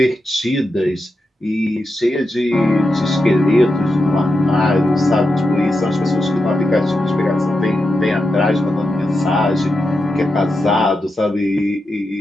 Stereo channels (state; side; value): normal; both; correlation 0.88